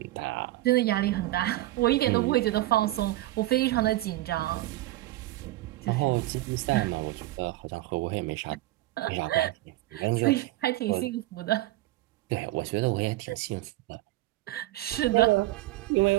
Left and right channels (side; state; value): left; quieter; 17.1 dB